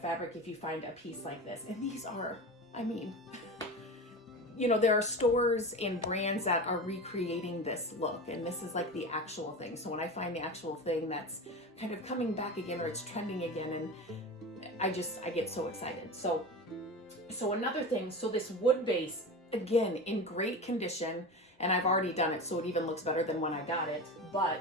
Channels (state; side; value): normal; both; correlation 0.28